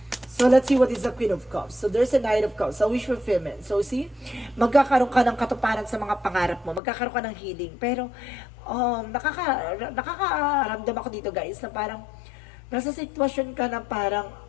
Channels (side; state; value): right; drops out; at 6.8 s